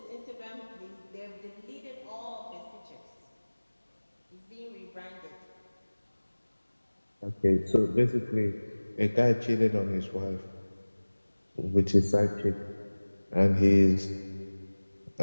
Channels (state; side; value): inverted; both; correlation -1.00